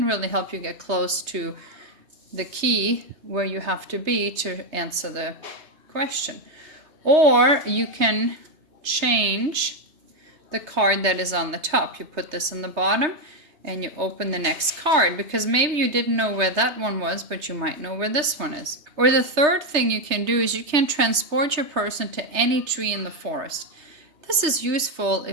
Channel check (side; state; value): left; late; 3.2 ms